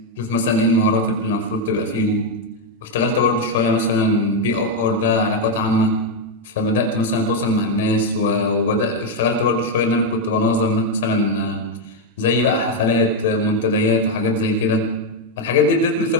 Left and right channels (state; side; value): normal; both; correlation 0.03